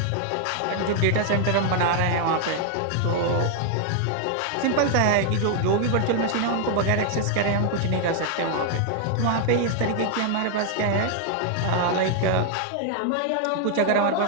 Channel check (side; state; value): both; different; correlation 0.00